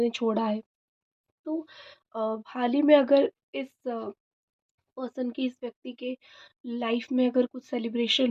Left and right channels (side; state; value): both; identical; correlation 1.00